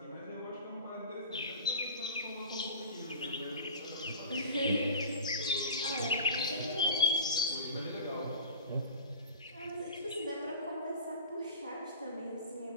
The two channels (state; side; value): inverted; both; correlation -0.36